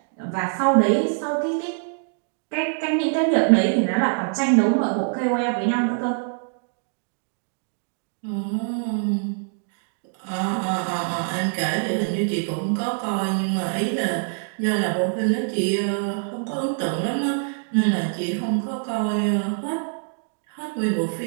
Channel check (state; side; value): silent; left; digital silence